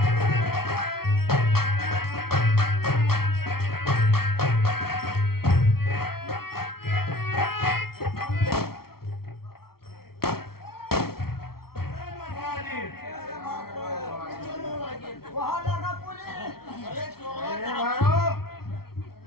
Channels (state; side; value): late; right; 0.94 ms